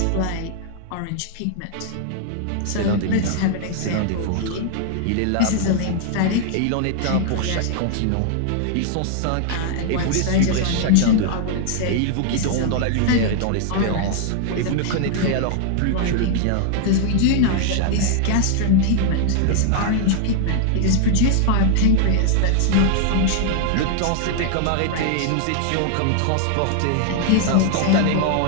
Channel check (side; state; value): both; different; correlation 0.00